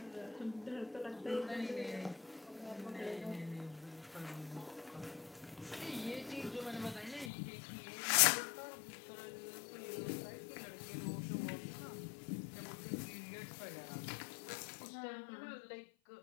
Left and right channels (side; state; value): right; drops out; at 7.3 s